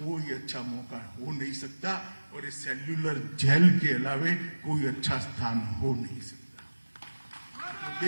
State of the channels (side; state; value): both; inverted; correlation -1.00